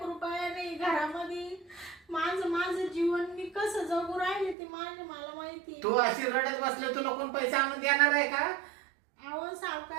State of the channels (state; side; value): drops out; left; at 4.5 s